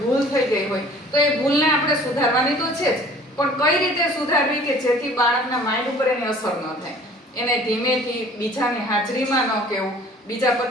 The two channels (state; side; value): normal; both; correlation 0.50